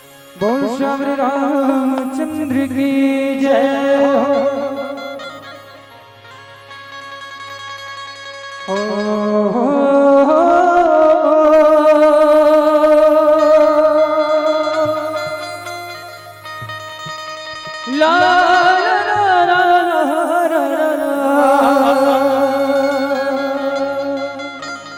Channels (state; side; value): identical; both; correlation 1.00